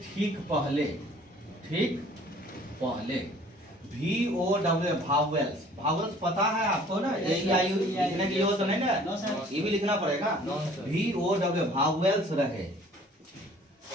ठीक पहले VOW भावेल्स पता है आपको ना? AEIU लिखने की जरूरत नहीं ना, ये भी लिखना पड़ेगा। VOW भावेल्स रहे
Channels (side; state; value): both; normal; correlation 0.53